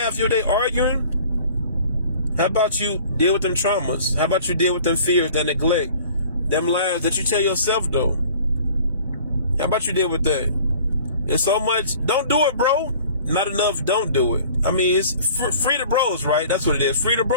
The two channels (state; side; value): inverted; both; correlation -0.48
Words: your day arguing? How about you deal with them traumas? How about you deal with them fears, that neglect, them lies that you tell yourself, though? How about you deal with that? There's so much. Don't do it, bro. Not enough, don't do it. I mean, it's free the bros, right? That's what it is. Free the